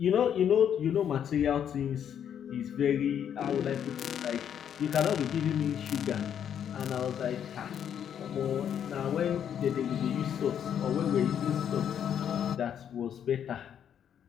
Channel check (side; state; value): right; quieter; 9.0 dB